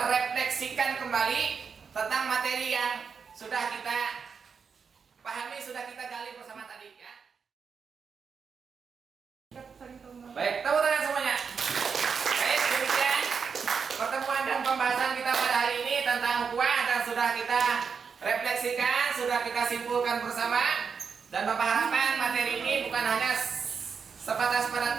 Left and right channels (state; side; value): quieter; left; 6.0 dB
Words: kembali tentang materi yang sudah kita pahami, sudah kita gali bersama tadi ya. Baik, tepuk tangan semuanya. Baik, demikian pertemuan dan pembahasan kita pada hari ini tentang ukhuwah, dan sudah kita refleksikan, sudah kita simpulkan bersama. Dan Bapak harapkan materi ini bukan hanya sebatas pada